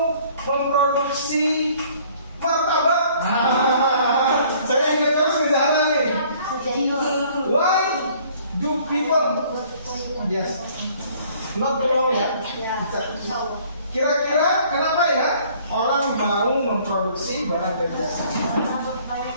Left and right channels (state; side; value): inverted; both; correlation -0.57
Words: memproduksi martabak? Saya ingat terus di sana nih. Why do people? Yes. Not tolong ya. Kira-kira kenapa ya orang mau memproduksi barang dan jasa?